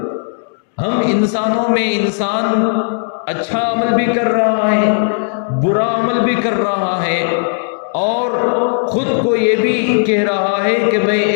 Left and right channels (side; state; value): right; silent; digital silence